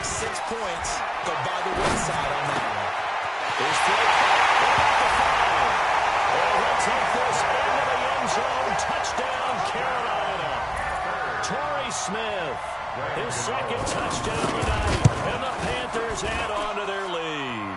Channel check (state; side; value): identical; both; correlation 1.00